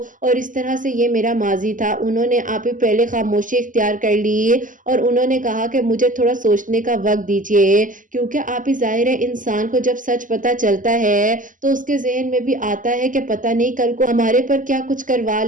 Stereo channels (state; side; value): late; left; 0.38 ms